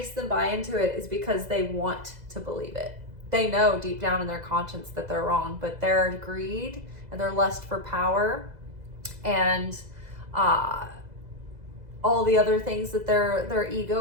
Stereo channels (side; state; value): left; late; 2.0 ms